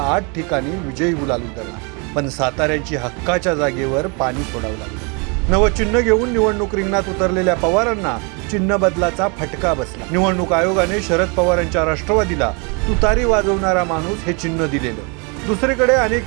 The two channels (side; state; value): left; quieter; 32.7 dB